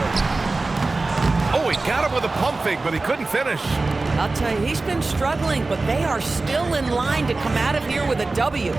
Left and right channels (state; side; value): quieter; left; 3.4 dB